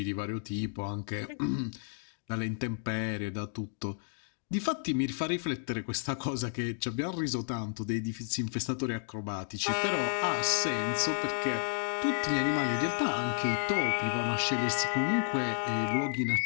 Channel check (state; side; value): silent; right; digital silence